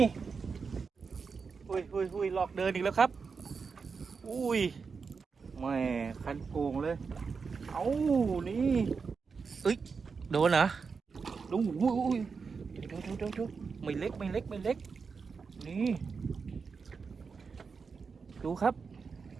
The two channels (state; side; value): quieter; left; 5.2 dB